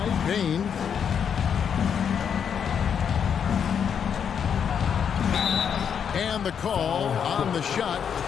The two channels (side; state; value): right; quieter; 7.6 dB